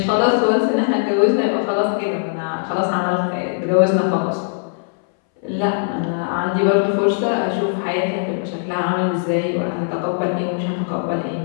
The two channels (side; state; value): right; silent; 63 dB below the other